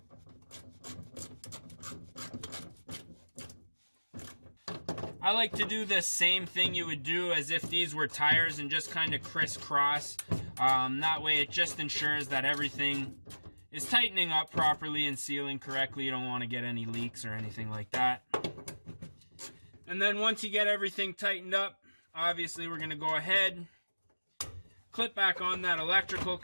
I like to do the same thing you would do as if these were tires and just kind of crisscross. That way it just ensures that everything is tightening up properly and sealing correctly. You don't want to get any leaks or anything like that. And then once you get everything tightened up, obviously we're going to go ahead, clip back on that electrical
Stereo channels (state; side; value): inverted; both; correlation -1.00